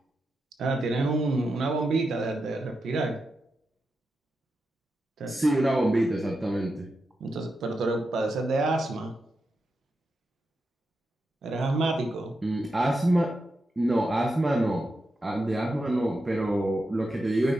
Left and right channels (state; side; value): normal; both; correlation 0.88